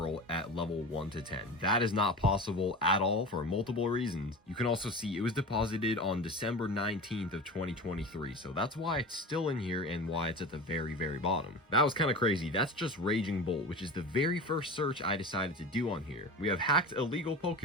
at level 1 to 10. That is not possible at all for multiple reasons. You can also see it was deposited on December 19th of 2023, so that's why it's still in here and why it's at the very bottom. That was kind of crazy. That's just Raging Bolt, which is the very first search I decided to do on here. We have hacked illegal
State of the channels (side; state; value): both; normal; correlation 0.31